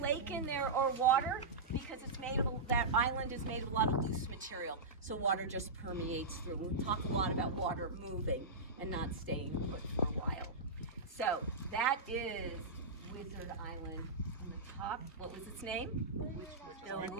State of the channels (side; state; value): left; quieter; 3.2 dB